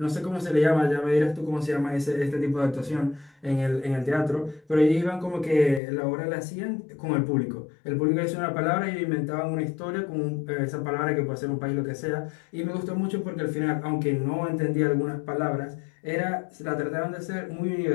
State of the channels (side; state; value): right; drops out; at 5.8 s